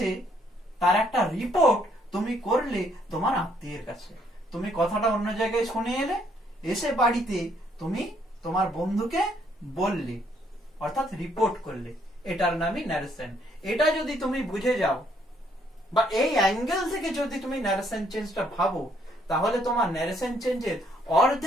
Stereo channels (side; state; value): both; normal; correlation 0.68